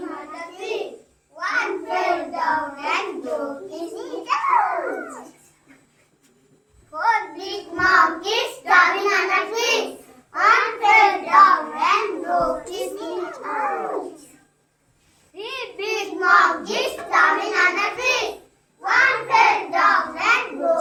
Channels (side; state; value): both; identical; correlation 1.00